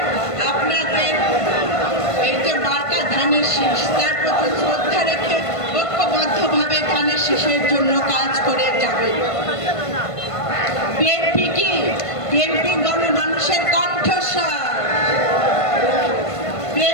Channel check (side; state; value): right; late; 1.5 ms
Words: আপনাদের এই যে মার্কা ধানের শীষ তার প্রতি শ্রদ্ধা রেখে ঐক্যবদ্ধভাবে ধানের শীষের জন্য কাজ করে যাবে। বিএনপি কি? বিএনপি গণমানুষের কণ্ঠস্বর।